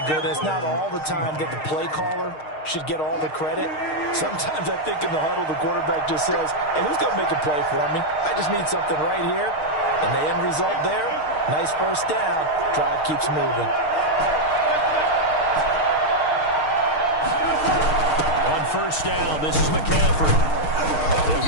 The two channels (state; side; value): late; right; 6.5 ms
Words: good. It's not all the time that the play caller should get all the credit. Sometimes I think in the huddle, the quarterback just says, hey, who's going to make a play for me? I just need something right here. And the end result there, nice first down. Drive keeps moving. On first down, this is McCaffrey. They'll